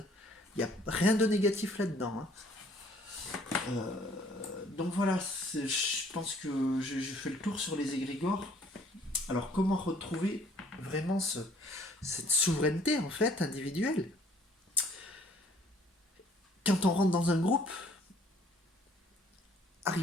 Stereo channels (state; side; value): normal; both; correlation 0.59